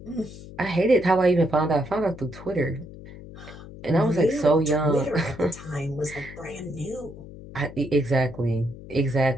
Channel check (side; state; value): left; noise; hum, 15 dB below the sound